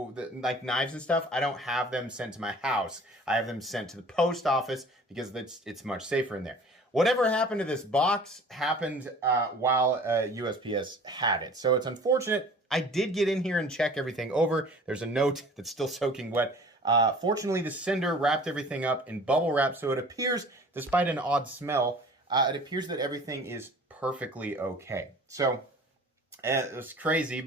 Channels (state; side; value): normal; both; correlation 0.46